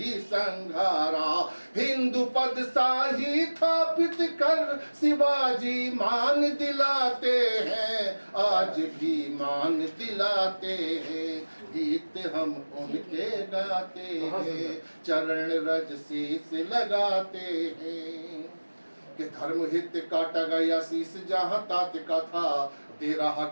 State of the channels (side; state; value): both; inverted; correlation -1.00